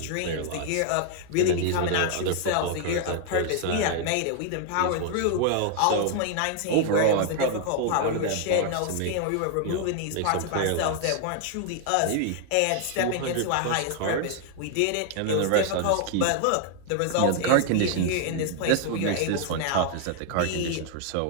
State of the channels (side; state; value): both; different; correlation 0.00